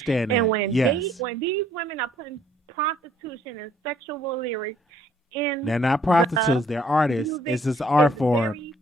that. And when yes. when these women are putting prostitution and sexual lyrics in, they're not prostitutes, they're artists. It's just art form.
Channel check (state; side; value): normal; both; correlation 0.63